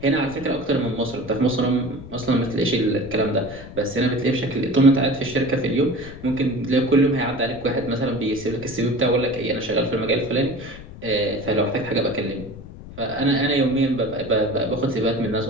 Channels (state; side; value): noise; left; rumble, 15 dB below the sound